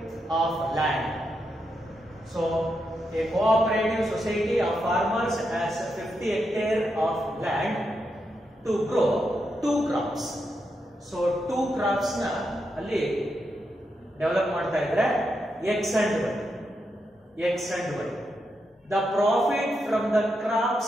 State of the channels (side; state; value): both; normal; correlation 0.84